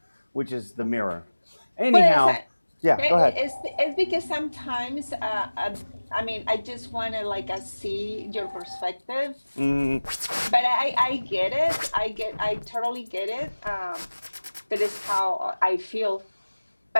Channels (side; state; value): both; inverted; correlation -1.00